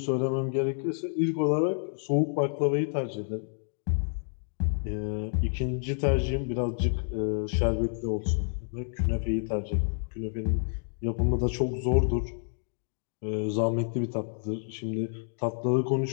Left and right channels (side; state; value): right; silent; digital silence